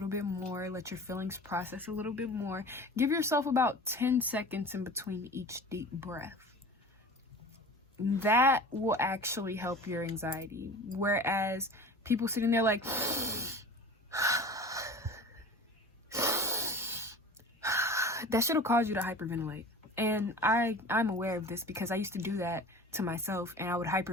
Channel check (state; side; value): normal; both; correlation 0.39